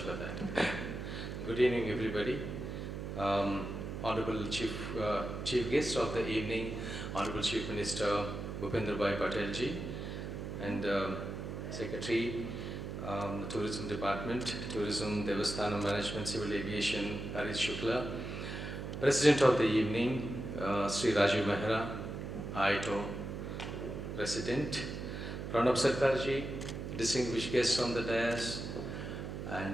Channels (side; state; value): right; noise; hum, 6 dB below the sound